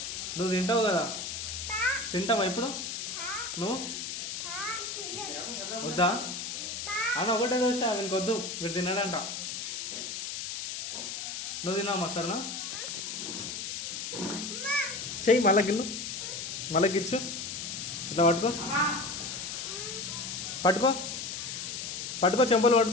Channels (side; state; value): left; noise; hiss, 5 dB below the sound